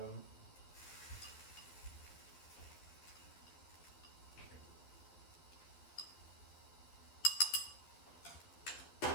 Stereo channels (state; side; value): late; right; 12 ms